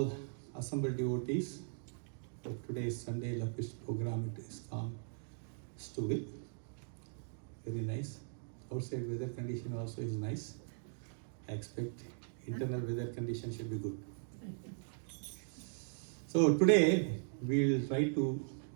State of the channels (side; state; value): left; silent; digital silence